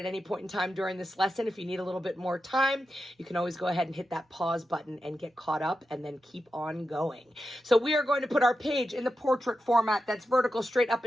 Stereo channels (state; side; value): normal; both; correlation 0.90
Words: any point in time during this lesson, if you need a little bit more time, you can always go ahead and hit that pause button and get caught up and then keep on going. So we are going to put our page in the portrait format that's vertical, straight up